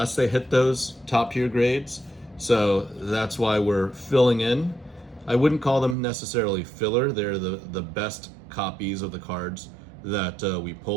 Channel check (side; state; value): left; drops out; at 6.0 s